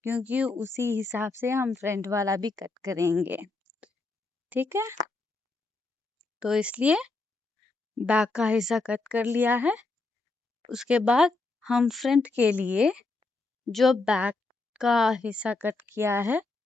क्योंकि उसी हिसाब से हम फ्रंट वाला भी कट करेंगे, ठीक है। तो इसलिए बैक का हिस्सा कट कर लिया है। उसके बाद हम फ्रंट के लिए जो बैक का हिस्सा कट किया है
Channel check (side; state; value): right; quieter; 3.4 dB